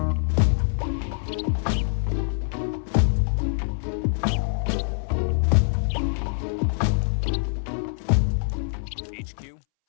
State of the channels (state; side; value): silent; right; 62 dB below the other